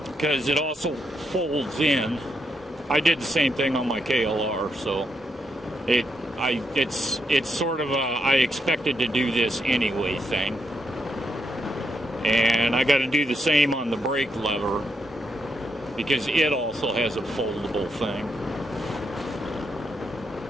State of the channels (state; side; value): normal; both; correlation 0.80